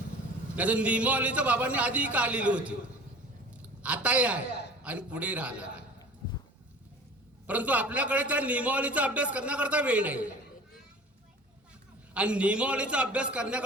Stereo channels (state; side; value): normal; both; correlation 0.42